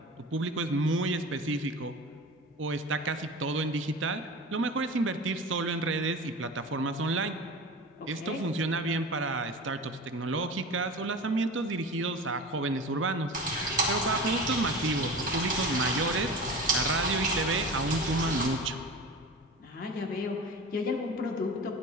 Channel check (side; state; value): both; normal; correlation 0.33